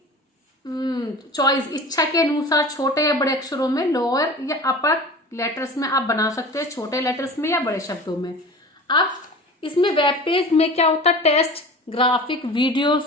चॉइस, इच्छा के अनुसार छोटे या बड़े अक्षरों में, लोअर या अपर लेटर्स में आप बना सकते हैं, छोटे लेटर्स में या बड़े शब्दों में। अब इसमें वेब पेज में क्या होता है, टेक्स्ट, ग्राफिक, वीडियो,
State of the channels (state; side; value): normal; both; correlation 0.37